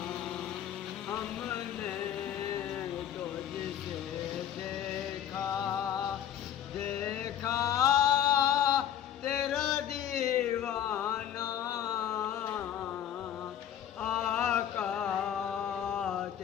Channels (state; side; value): quieter; right; 10.1 dB